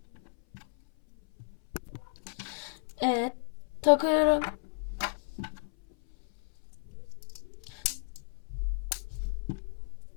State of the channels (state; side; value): silent; right; 55 dB below the other